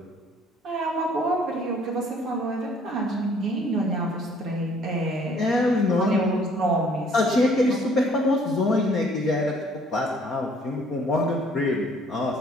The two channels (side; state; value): both; normal; correlation 0.59